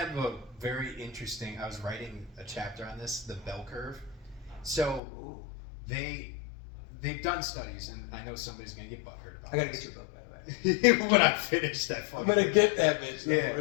a very interesting, I was writing a chapter on this, the bell curve. So they've done studies, and I know somebody's going to get butthurt about it. I got to get your book, by the way. When I finish that fucking I'm going to get that bitch. Yeah.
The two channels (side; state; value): right; drops out; at 5.0 s